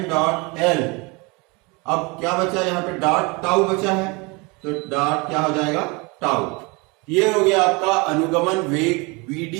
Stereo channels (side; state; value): left; quieter; 27.7 dB